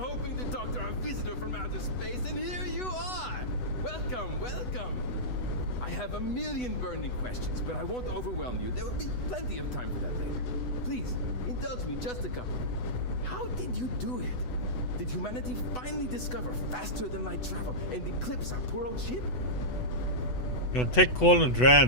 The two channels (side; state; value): right; late; 8.1 ms